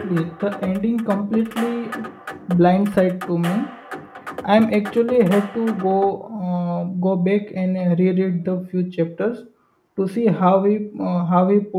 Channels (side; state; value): both; identical; correlation 1.00